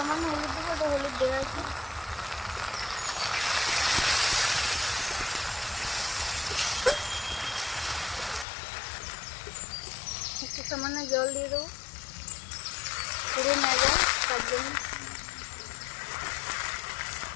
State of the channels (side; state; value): right; drops out; at 8.5 s